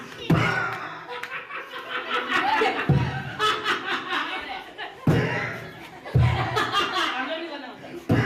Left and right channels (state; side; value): identical; both; correlation 1.00